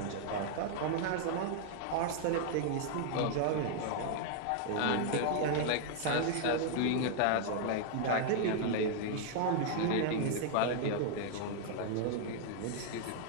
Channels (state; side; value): different; both; correlation 0.00